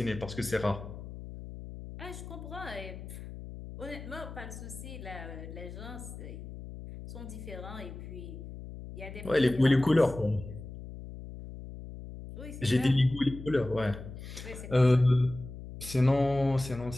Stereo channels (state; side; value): noise; left; hum, 12 dB below the sound